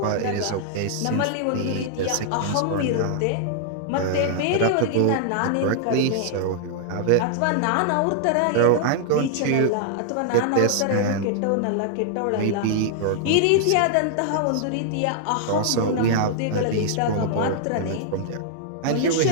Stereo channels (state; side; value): different; both; correlation -0.01